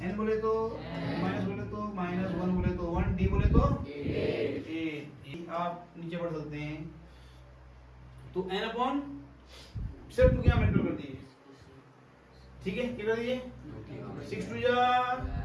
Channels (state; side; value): identical; both; correlation 1.00